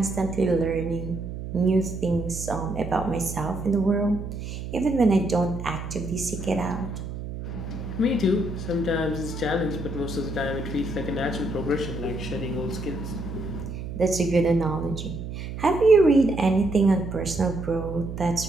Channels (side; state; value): right; noise; hum, 7 dB below the sound